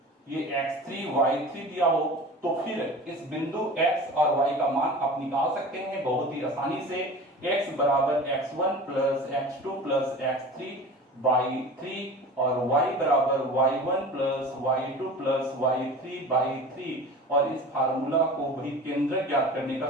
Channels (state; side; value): normal; both; correlation 0.37